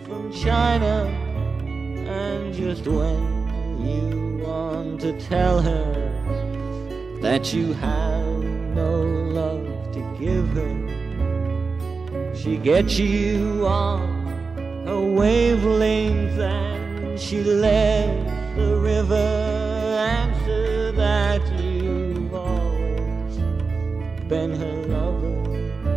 from China. And just when you want to tell her that you have no love to give her, she gets you on her wavelength and she lets the river answer that you've always been her lover.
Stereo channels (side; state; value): left; quieter; 4.5 dB